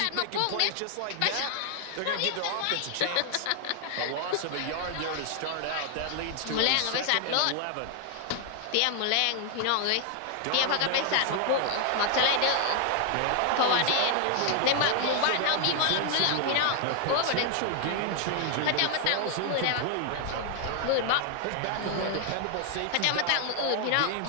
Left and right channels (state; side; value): different; both; correlation 0.00